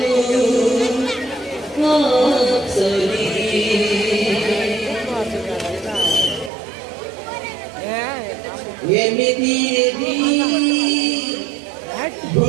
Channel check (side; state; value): left; drops out; at 6.5 s